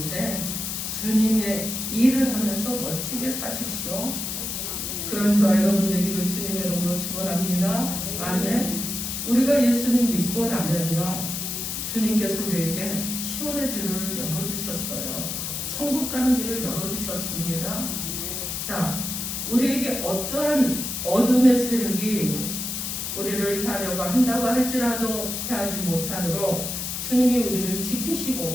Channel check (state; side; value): noise; left; hiss, 4 dB below the sound